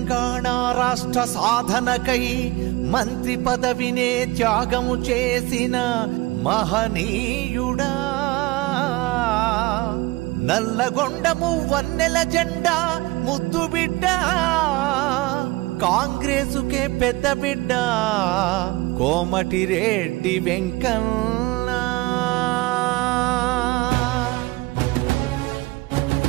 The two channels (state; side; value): quieter; left; 21.2 dB